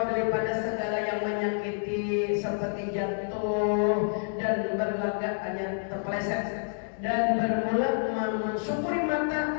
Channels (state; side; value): silent; right; digital silence